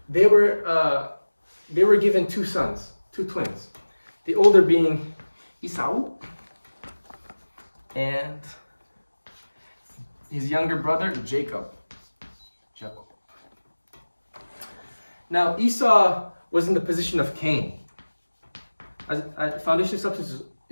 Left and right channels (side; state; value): both; inverted; correlation -1.00